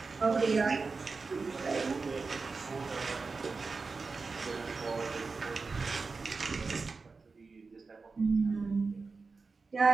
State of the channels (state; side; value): quieter; left; 4.3 dB